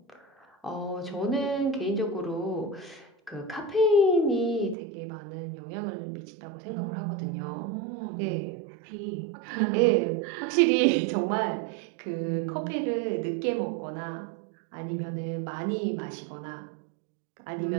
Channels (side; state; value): left; drops out; at 4.8 s